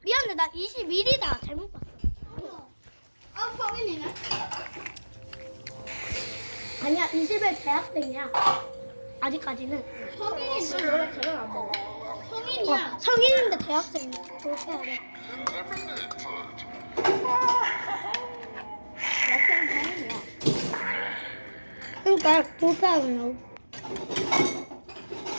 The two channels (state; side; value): inverted; both; correlation -1.00